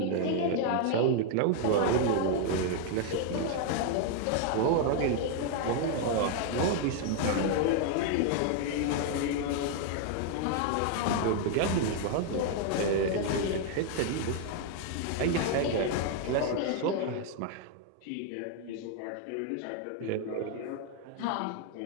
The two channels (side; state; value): both; different; correlation 0.00